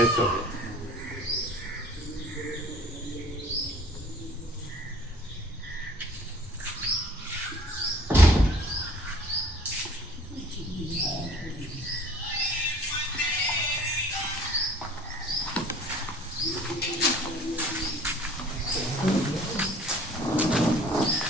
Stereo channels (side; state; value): both; normal; correlation 0.51